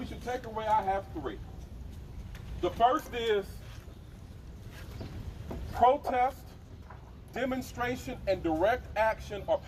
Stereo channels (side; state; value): both; identical; correlation 1.00